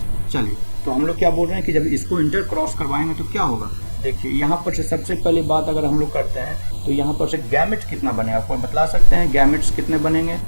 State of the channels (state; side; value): inverted; both; correlation -1.00